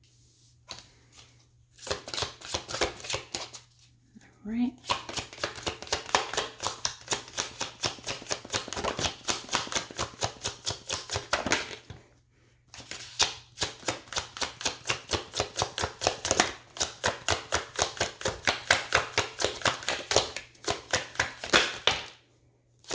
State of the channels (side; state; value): both; identical; correlation 1.00